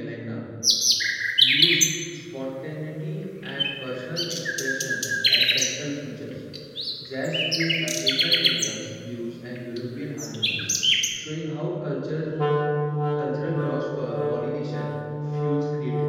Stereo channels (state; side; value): identical; both; correlation 1.00